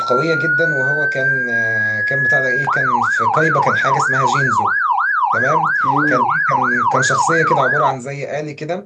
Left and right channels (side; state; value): both; identical; correlation 1.00